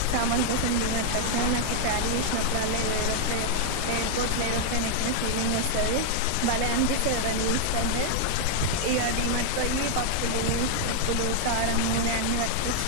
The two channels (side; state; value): both; different; correlation 0.00